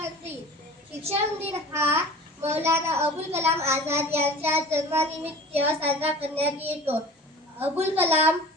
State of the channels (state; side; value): normal; both; correlation 0.41